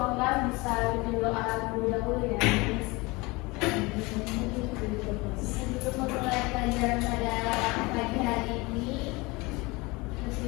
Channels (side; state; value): right; quieter; 24.3 dB